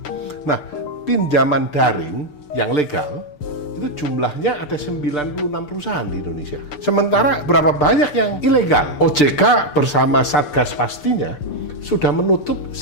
Nah, pinjaman daring yang legal itu jumlahnya ada 96 perusahaan di Indonesia. Sementara berapa banyak yang ilegal? OJK bersama Satgas pastinya sudah menutup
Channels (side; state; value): right; late; 6.8 ms